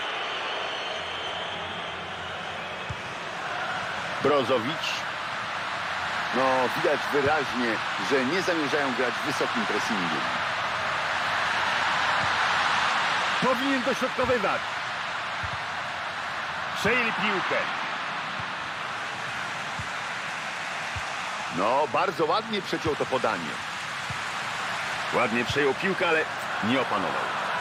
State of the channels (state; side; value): identical; both; correlation 1.00